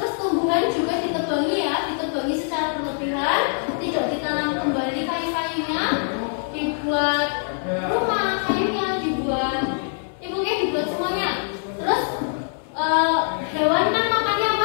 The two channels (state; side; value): silent; right; digital silence